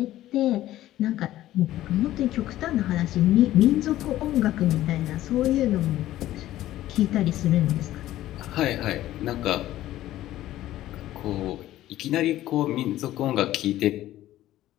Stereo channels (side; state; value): right; quieter; 14.3 dB